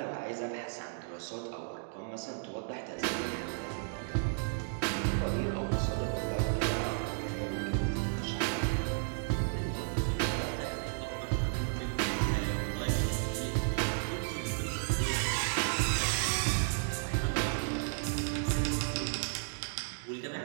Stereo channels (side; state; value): left; silent; digital silence